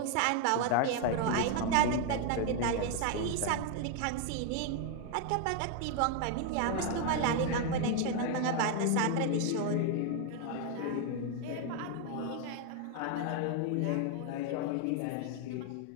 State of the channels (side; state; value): both; different; correlation 0.01